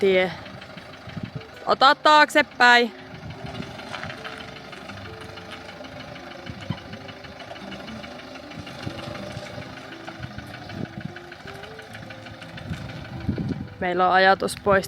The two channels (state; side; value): identical; both; correlation 1.00